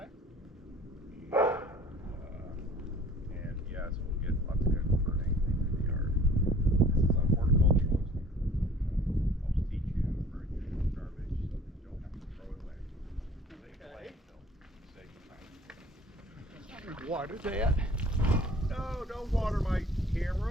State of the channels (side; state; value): both; normal; correlation 0.50